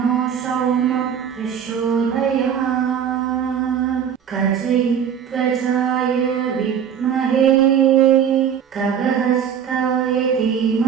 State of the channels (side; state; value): left; quieter; 8.2 dB